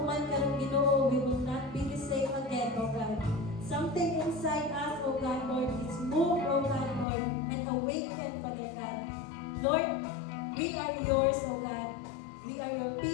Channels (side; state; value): right; drops out; at 7.1 s